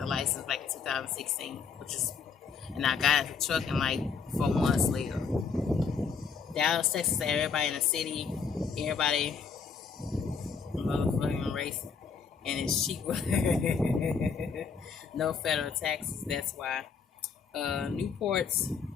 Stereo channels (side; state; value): right; quieter; 5.7 dB